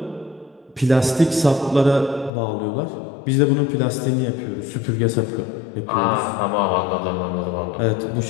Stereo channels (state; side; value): drops out; right; at 2.3 s